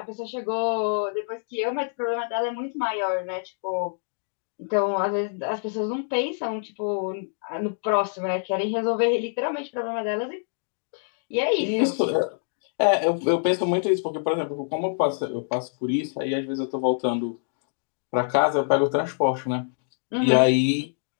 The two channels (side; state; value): right; silent; digital silence